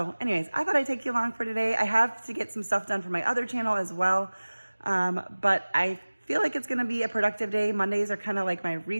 anyways, I thought I'd take you along for today. I have to get some stuff done for my other channel as well, but I feel like it's gonna be a productive day. Mondays are kind of like my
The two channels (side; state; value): both; inverted; correlation -1.00